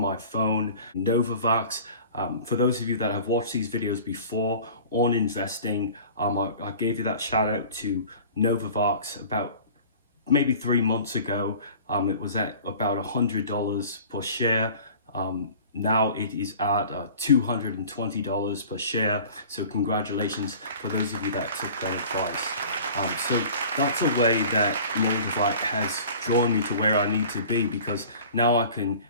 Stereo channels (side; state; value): both; inverted; correlation -0.43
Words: phone. Novavax, for those of you that have watched these videos before on investing, I gave you that shout out to Novavax about maybe 3 months ago. It was at about $100 per share. Now it is at $220 per share. So congratulations for those of you that took that advice. So that's a way that Moldavite has drawn me to where I need to be, because now I can